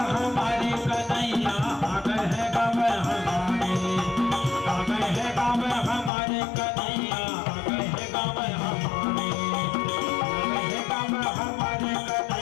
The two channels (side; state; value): right; drops out; at 6.1 s